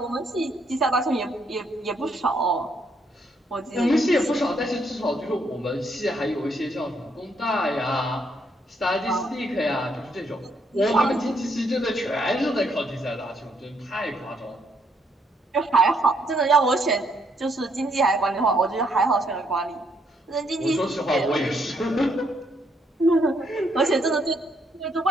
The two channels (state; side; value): normal; both; correlation 0.72